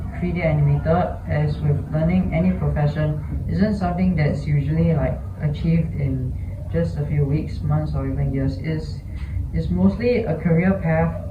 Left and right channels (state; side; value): identical; both; correlation 1.00